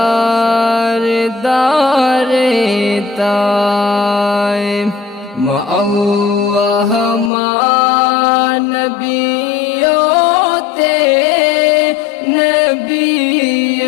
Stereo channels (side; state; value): right; drops out; at 7.3 s